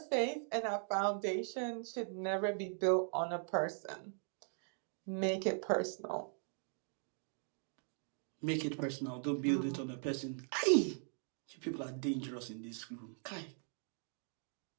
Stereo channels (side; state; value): left; silent; 51 dB below the other